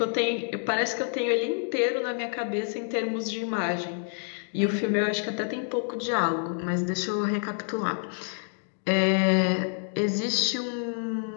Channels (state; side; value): silent; right; 60 dB below the other